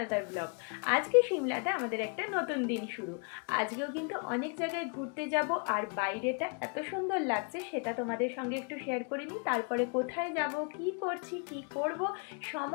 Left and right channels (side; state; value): right; quieter; 38.6 dB